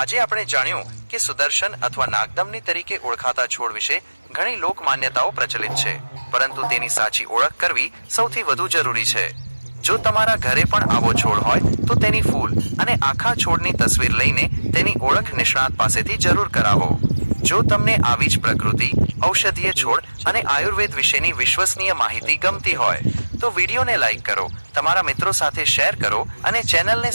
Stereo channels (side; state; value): both; inverted; correlation -1.00